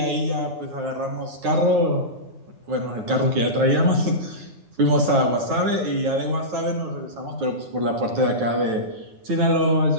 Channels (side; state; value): left; late; 9.1 ms